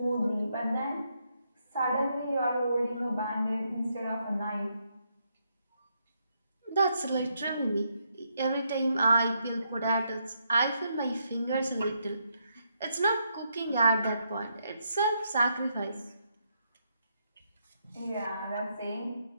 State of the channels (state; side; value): inverted; both; correlation -0.78